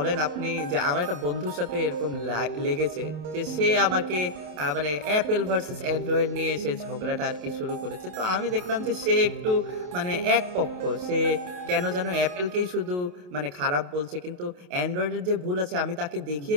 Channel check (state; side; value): late; left; 28 ms